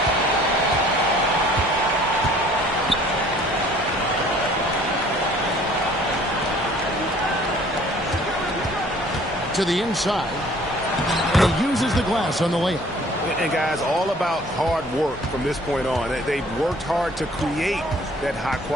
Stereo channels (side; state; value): both; normal; correlation 0.54